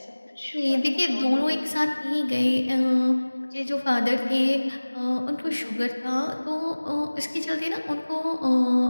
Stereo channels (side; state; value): both; inverted; correlation -1.00